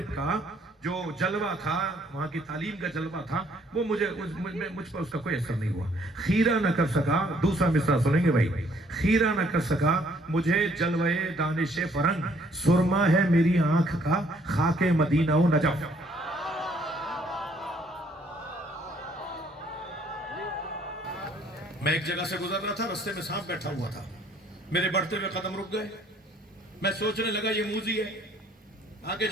کا جو جلوہ تھا، وہاں کی تعلیم کا جلوہ تھا، وہ مجھ پر اس کا کوئی اثر نہیں ہوا۔ خیرہ نہ کر سکا، دوسرا مصرع سنیں گے بھائی، خیرہ نہ کر سکا مجھے جلوے دانش فرنگ، سرما ہے میری آنکھ کا خاک مدینہ و نجف۔ میں ایک جگہ سے گزر رہا تھا، رستے میں سانپ بیٹھا ہوا تھا، میرے بڑھتے ہوئے قدم رک گئے۔ میں سوچنے لگا یہ موذی ہے، آگے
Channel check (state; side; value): normal; both; correlation 0.64